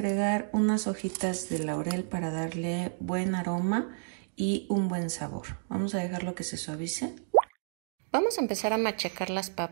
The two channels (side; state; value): left; silent; digital silence